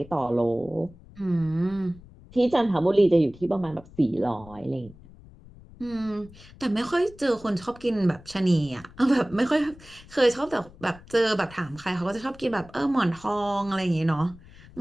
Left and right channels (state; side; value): noise; left; rumble, 21 dB below the sound